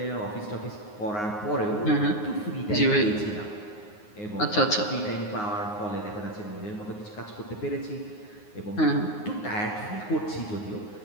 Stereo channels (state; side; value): late; right; 9.6 ms